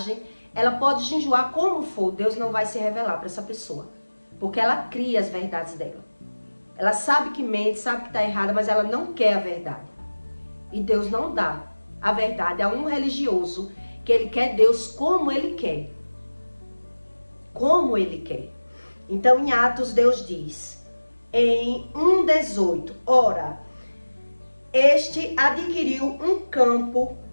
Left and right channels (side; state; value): both; inverted; correlation -1.00